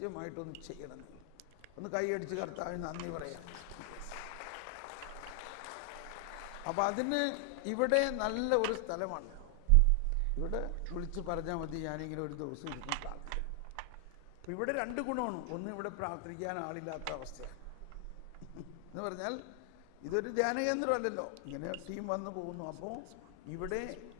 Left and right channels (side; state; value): both; different; correlation 0.00